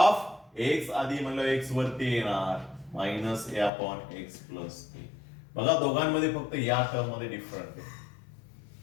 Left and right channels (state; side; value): drops out; right; at 3.7 s